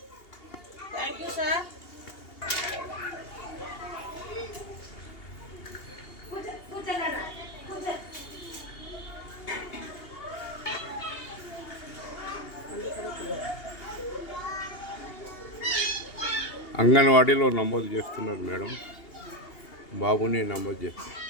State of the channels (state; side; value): late; right; 2.8 ms